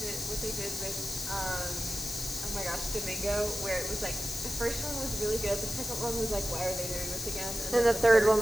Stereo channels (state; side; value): noise; left; hiss, 5 dB below the sound